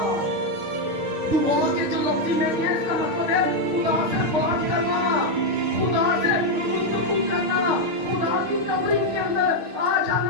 दुआ के जो लफ्ज़ी में है इसका मतलब है खुदा से बात करना, खुदा से गुफ्तगू करना, खुदा की कवरिंग के अंदर आ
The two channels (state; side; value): late; left; 6.5 ms